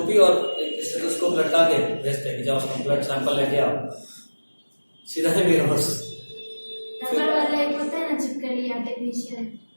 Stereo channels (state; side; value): inverted; both; correlation -1.00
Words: और एक स्टेथोस्कोप लटका के भेजते हैं कि जाओ उसका ब्लड सैंपल लेके आओ, सीधा है मेरे पास। रबड़ वाला एक होता है ना छिपकली आर्टिफिशियल,